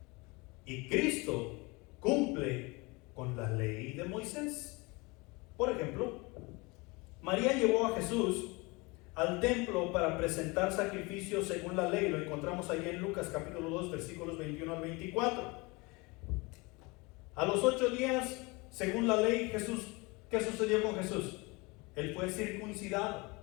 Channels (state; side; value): quieter; right; 25.9 dB